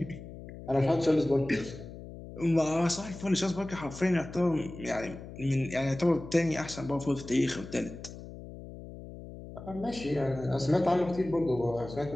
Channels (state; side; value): noise; left; hum, 13 dB below the sound